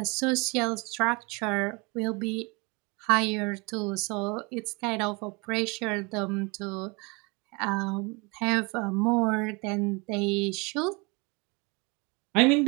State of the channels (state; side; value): quieter; left; 28.5 dB